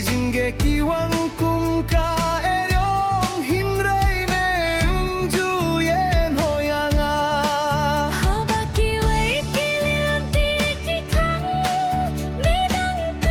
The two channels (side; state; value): both; identical; correlation 1.00